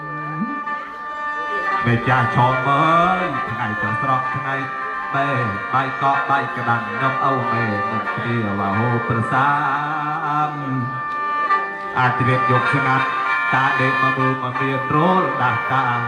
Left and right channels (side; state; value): both; identical; correlation 1.00